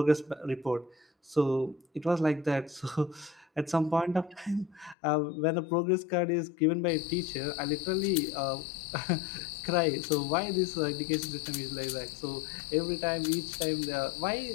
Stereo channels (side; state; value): right; drops out; at 5.0 s